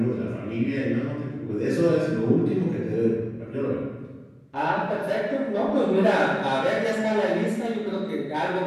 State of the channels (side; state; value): both; identical; correlation 1.00